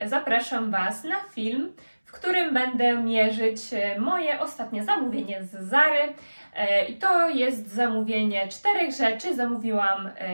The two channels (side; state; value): both; inverted; correlation -1.00